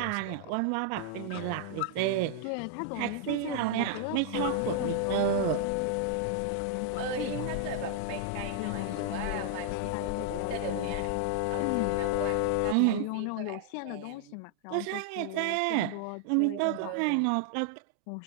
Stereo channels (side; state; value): both; different; correlation -0.01